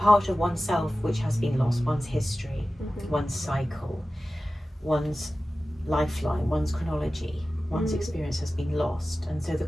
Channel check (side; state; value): both; normal; correlation 0.95